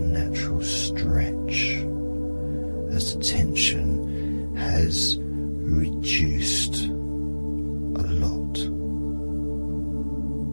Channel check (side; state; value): both; inverted; correlation -1.00